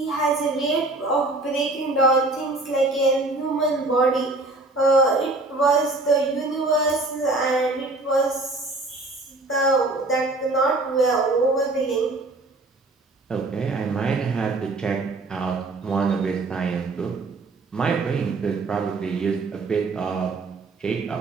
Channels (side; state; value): left; quieter; 3.1 dB